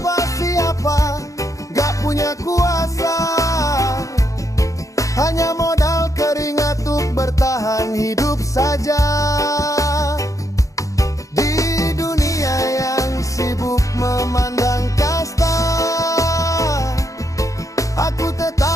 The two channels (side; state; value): right; late; 0.16 ms